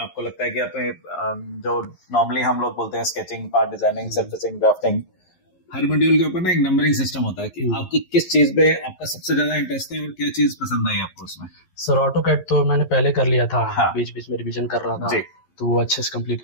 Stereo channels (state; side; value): late; right; 11 ms